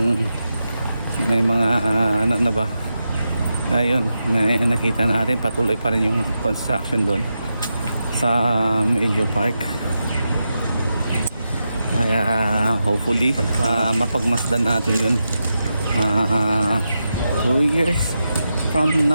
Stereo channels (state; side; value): inverted; both; correlation -0.88